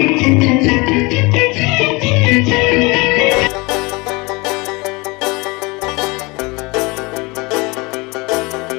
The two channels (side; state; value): right; quieter; 26.0 dB